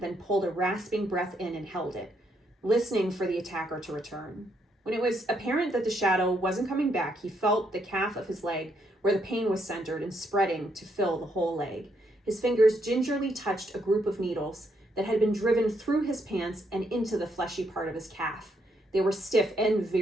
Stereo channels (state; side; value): normal; both; correlation 0.75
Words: pulled a rasping breath in and held it, listening for the attacker to return. When it was apparent that the shadow wasn't coming back, he felt the calf of his leg, where the pain was centered and spreading to fill the whole leg. His fingers gingerly touched a group of needles that had been driven through his pants and into the fleshy part of his calf. They were stiff and